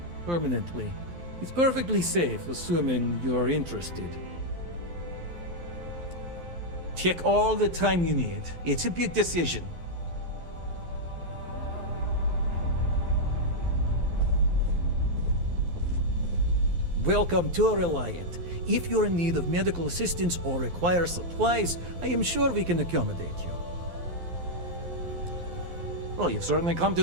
permanently. It's perfectly safe, assuming you're interested. Take all the time you need. It's a big decision. Welcome to Reliant. If you're in need of medical assistance or require supplies, I am sure we can accommodate you. Well, you've certainly come to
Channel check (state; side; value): late; left; 12 ms